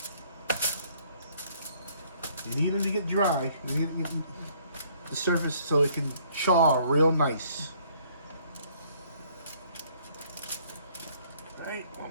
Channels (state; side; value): inverted; both; correlation -0.62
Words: You need them to get dry. You need the surface so it can char real nice. Right,